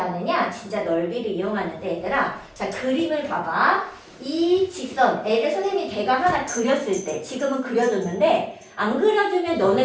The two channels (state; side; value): identical; both; correlation 1.00